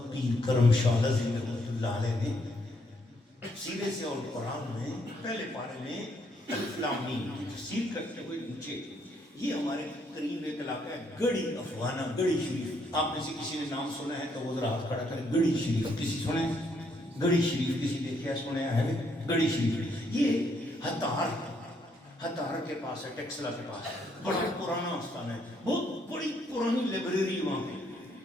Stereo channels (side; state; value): both; normal; correlation 0.72